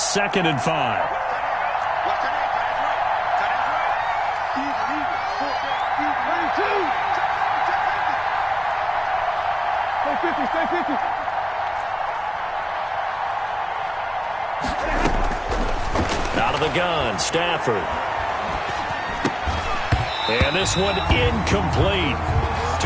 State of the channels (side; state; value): both; identical; correlation 1.00